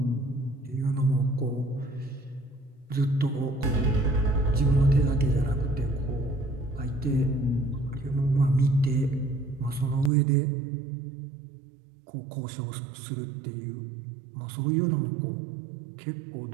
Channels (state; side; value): drops out; left; at 10.1 s